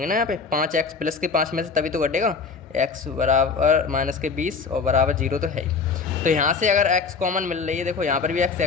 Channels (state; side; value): quieter; right; 5.1 dB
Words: ना, यहाँ पे 5x प्लस के 5 में से तभी तो घटेगा, x बराबर माइनस के 20 और बराबर 0 तो है ही। तो यहाँ से अगर x कॉमन मिल रही है, देखो यहाँ पर भी